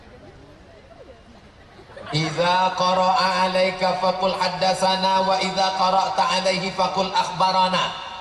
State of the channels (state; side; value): identical; both; correlation 1.00